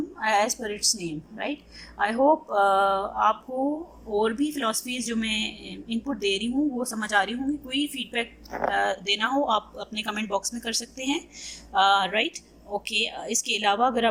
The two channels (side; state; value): both; identical; correlation 1.00